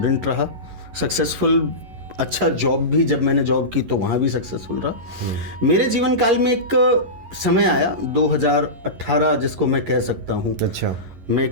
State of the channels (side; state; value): left; late; 11 ms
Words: रहा, सक्सेसफुल अच्छा जॉब भी, जब मैंने जॉब की तो वहाँ भी सक्सेसफुल रहा। मेरे जीवन काल में एक समय आया 2018 जिसको मैं कह सकता हूँ। अच्छा। मैं